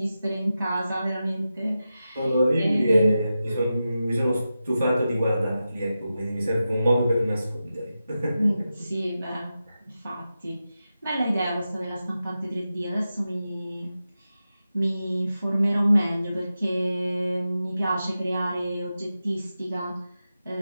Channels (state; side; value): inverted; both; correlation -0.91